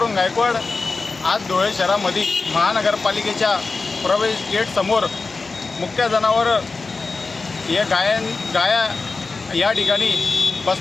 गायकवाड आज धुळे शहरामध्ये महानगरपालिकेच्या प्रवेश गेट समोर मुख्य जनावर हे गाया या ठिकाणी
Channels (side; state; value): right; quieter; 4.0 dB